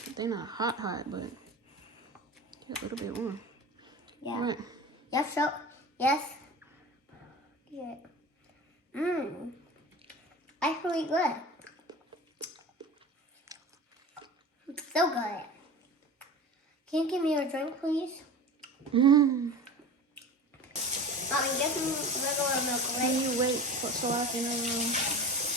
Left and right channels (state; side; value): normal; both; correlation 0.34